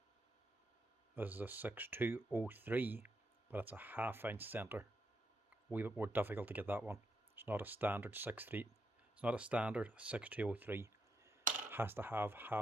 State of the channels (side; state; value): both; normal; correlation 0.80